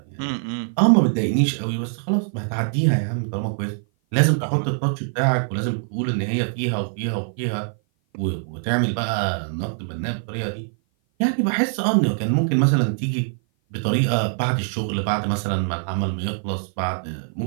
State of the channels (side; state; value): left; silent; 56 dB below the other